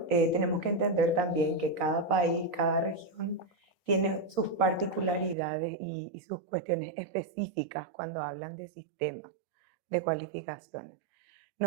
tenemos que entender también que cada país, cada región tiene sus particularidades y sus cuestiones específicas cuando hablan de sistemas de cualificaciones.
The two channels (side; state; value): left; drops out; at 5.4 s